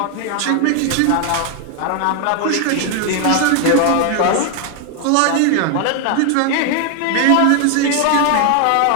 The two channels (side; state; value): both; different; correlation 0.00